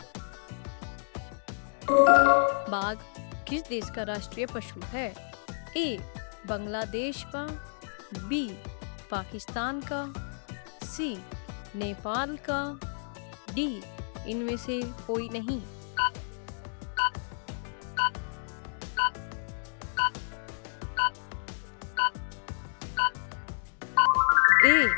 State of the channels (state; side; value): silent; right; digital silence